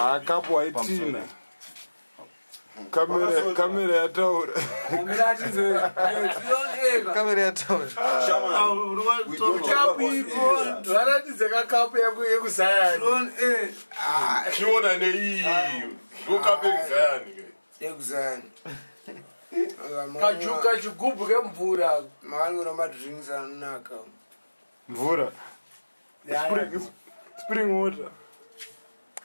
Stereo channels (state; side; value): inverted; both; correlation -1.00